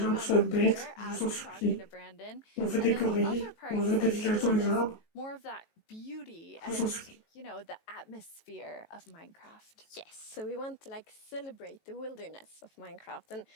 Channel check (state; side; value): late; right; 18 ms